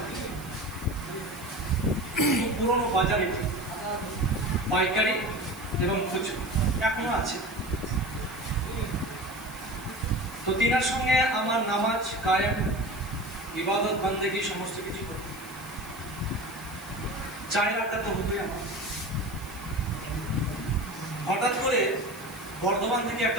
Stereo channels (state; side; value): noise; right; hiss, 19 dB below the sound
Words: পুরনো বাজারে পাইকারি এবং খুচরো এখনো আছে। তো তিনার সঙ্গে আমার নামাজ কায়েম, ইবাদত বান্দেগি সমস্ত কিছু করতে চায়ের আড্ডা তো হতোই আমার। হঠাৎ করে বর্ধমান থেকে